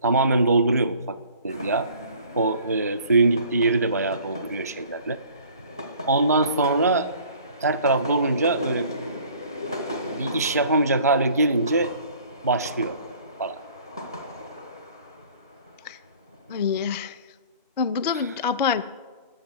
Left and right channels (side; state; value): both; inverted; correlation -0.51